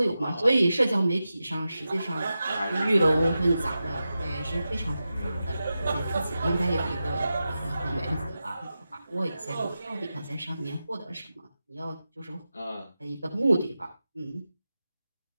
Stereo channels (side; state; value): both; inverted; correlation -0.92